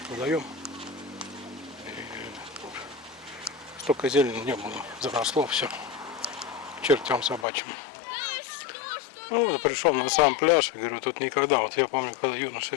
водоем. Столько зелени не было, заросло все к чертям собачьим. Ну, вот пришел на сам пляж, говорю, тут никогда, вот я помню, когда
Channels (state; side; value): drops out; right; at 7.5 s